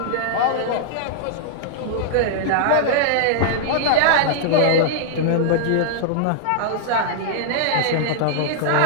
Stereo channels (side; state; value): both; different; correlation -0.01